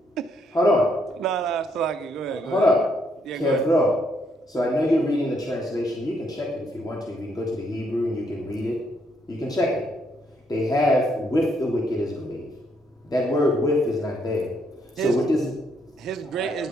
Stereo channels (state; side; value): normal; both; correlation 0.73